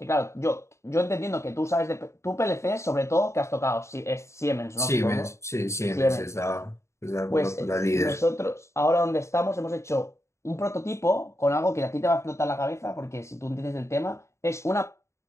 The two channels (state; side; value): late; right; 0.14 ms